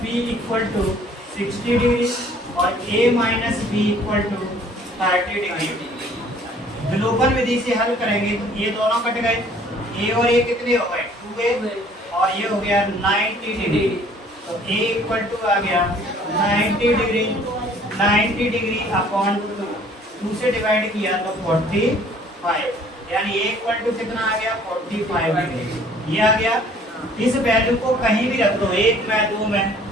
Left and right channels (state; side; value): normal; both; correlation 0.56